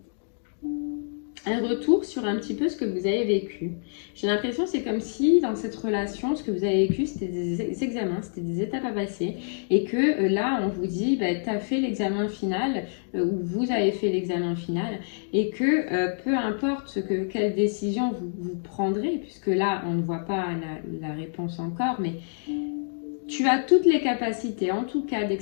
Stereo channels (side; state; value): right; silent; digital silence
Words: un retour sur un petit peu ce que vous avez vécu. J'ai l'impression c'est comme si dans cette relation, ce que vous avez vécu, c'était des examens, c'était des étapes à passer. Et que là, on vous dit, bah, tu as fait l'examen final, ou vous avez fait l'examen final, et que peu importe quelle décision vous prendrez, puisque là, on ne voit pas la réponse encore, mais tu as toutes les capacités, en tout cas, dès que